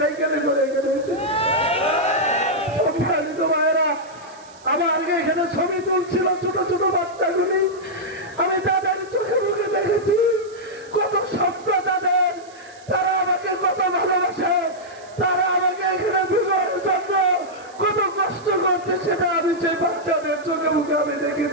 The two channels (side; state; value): right; noise; hiss, 25 dB below the sound